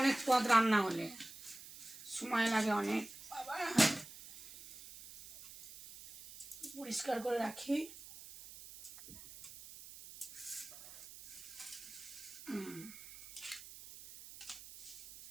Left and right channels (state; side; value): noise; right; hiss, 15 dB below the sound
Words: পদ রান্না হলে সময় লাগে অনেক। পরিষ্কার করে রাখি।